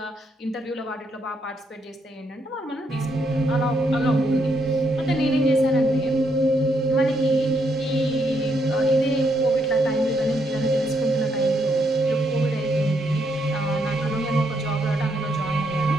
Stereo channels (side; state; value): both; normal; correlation 0.76